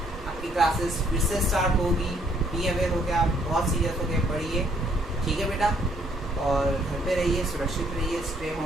आपकी क्लासेस फिर से स्टार्ट होगी, बी अवेयर होकर आप बहुत सीरियस होकर पढ़िए, ठीक है बेटा, और घर पे रहिए, सुरक्षित रहिए, स्टे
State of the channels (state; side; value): normal; both; correlation 0.67